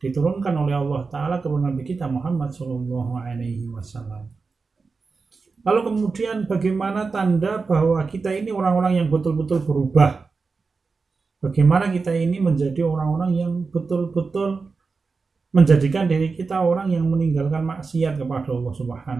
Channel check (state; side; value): quieter; left; 4.5 dB